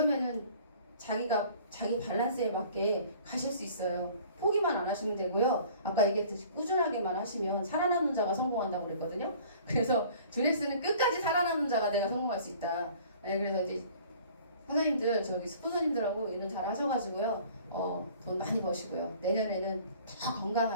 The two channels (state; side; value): inverted; both; correlation -0.50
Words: 자기가 자기 밸런스에 맞게 가실 수 있어요. 포기만 안 하시면 되고요. 아까 얘기했듯이 꾸준하게만 하시면 살아남는 자가 성공한다고 그랬거든요. 그래서 주넥스는 끝까지 살아남는 자가 내가 성공할 수 있다. 네, 그래서 이제 사장님들 저기 스폰서님들하고 일은 잘 하셔가지고요 돈 많이 버시고요 내년에는 더